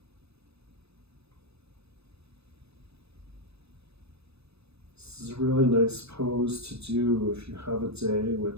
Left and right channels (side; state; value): left; late; 0.79 ms